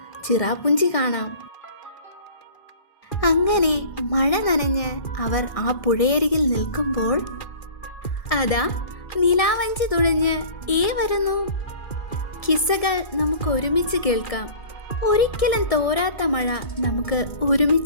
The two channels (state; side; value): late; right; 1.6 ms